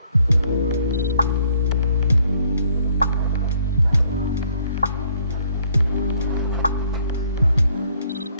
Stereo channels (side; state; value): both; inverted; correlation -0.65